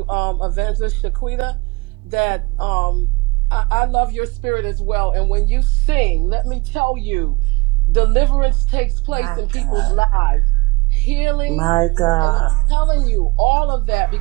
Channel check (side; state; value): left; quieter; 24.4 dB